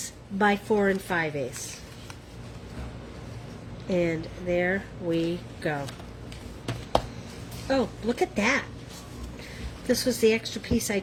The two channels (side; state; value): both; identical; correlation 1.00